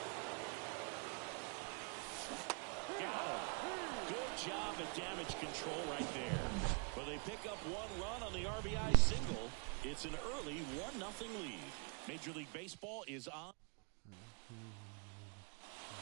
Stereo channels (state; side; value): quieter; left; 35.8 dB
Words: Job at damage control right there. But they pick up 1 run on the RBI single. It's an early 1-0 lead. Major League Baseball is on